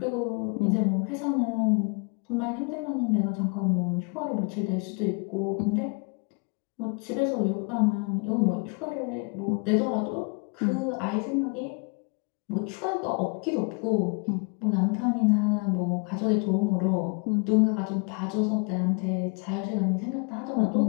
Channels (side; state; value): right; quieter; 33.9 dB